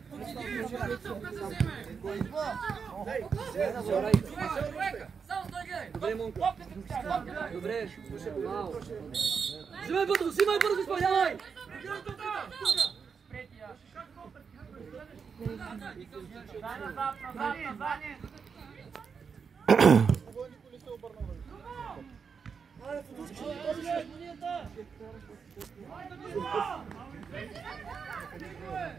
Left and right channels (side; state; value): left; quieter; 6.0 dB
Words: Добре, Монко. Добре. Взимай бързо, изпълнявай!